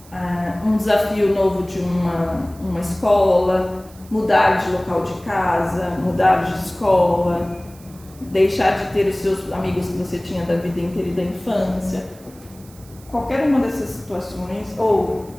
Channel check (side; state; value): right; noise; hiss, 24 dB below the sound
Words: um desafio novo de uma escola, mudar de local de casa, mudar de escola, deixar de ter os seus amigos que você tinha da vida inteira e da infância. Qualquer uma dessas situações, ou